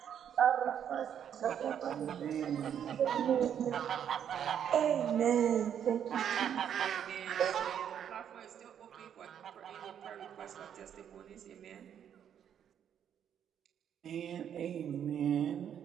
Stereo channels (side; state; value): left; quieter; 9.0 dB